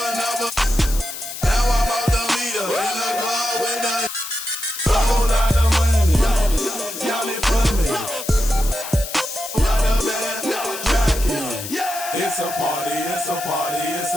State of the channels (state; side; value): noise; left; hiss, 9 dB below the sound